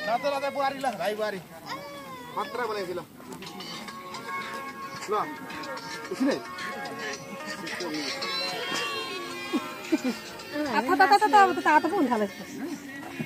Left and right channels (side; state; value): both; identical; correlation 1.00